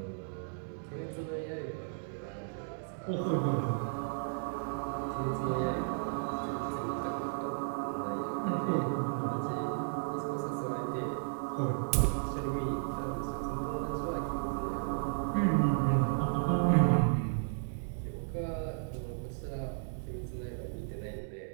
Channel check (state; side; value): silent; left; digital silence